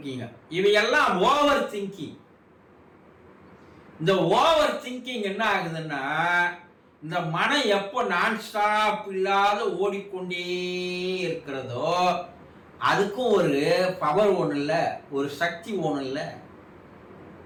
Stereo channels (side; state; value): both; identical; correlation 1.00